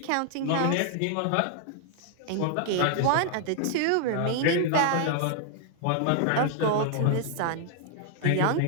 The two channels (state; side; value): different; both; correlation 0.00